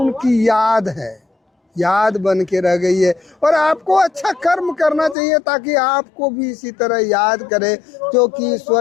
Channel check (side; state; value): right; drops out; at 5.2 s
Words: याद है, याद बन के रह गई है। और आपको अच्छा कर्म करना चाहिए ताकि आपको भी इसी तरह याद करे, क्योंकि